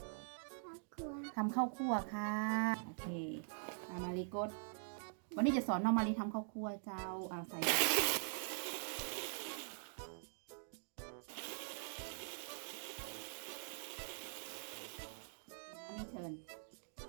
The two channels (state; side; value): silent; left; digital silence